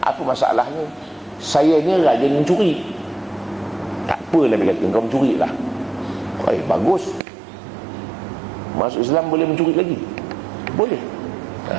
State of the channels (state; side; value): drops out; left; at 7.2 s